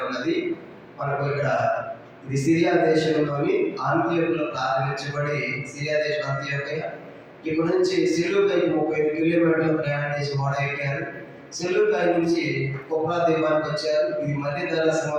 అన్నది మనకు ఇక్కడ ఇది సిరియా దేశంలోని అంతియోకులో ప్రారంభించబడి, సిరియా దేశం అంతియోకయ. ఇక్కడ నుంచి సెలూకాయి 35 కిలోమీటర్లు ప్రయాణం చేసి ఓడ ఎక్కారు. సెలూకాయి నుంచి కుప్రా ద్వీపానికి వచ్చారు. ఇది మధ్య ధరా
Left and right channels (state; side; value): identical; both; correlation 1.00